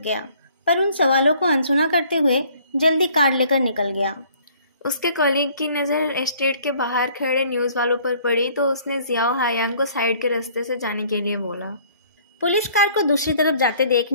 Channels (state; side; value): inverted; both; correlation -0.57